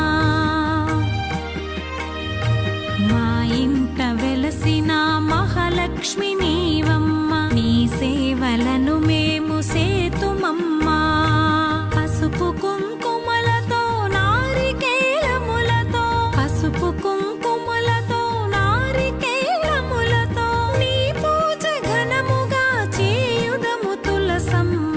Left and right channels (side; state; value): both; identical; correlation 1.00